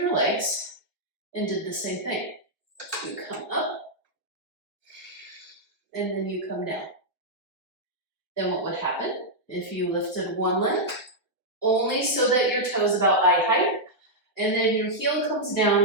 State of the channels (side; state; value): right; late; 1.1 ms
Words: legs and did the same thing? You come up, and then you come down. Then what would happen if you lifted one leg, only so that your toe is about eye height, and then your heel comes